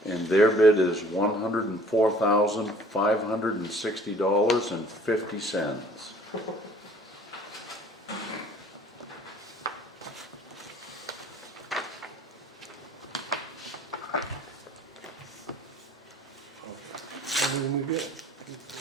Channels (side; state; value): both; normal; correlation 0.53